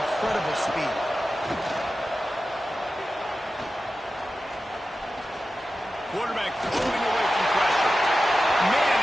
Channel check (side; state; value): both; normal; correlation 0.93